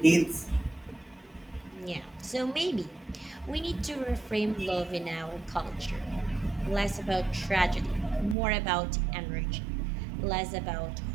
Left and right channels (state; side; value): drops out; left; at 8.3 s